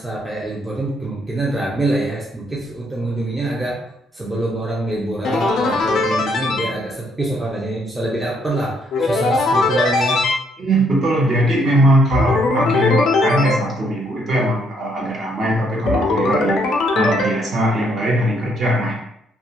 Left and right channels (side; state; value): both; normal; correlation 0.71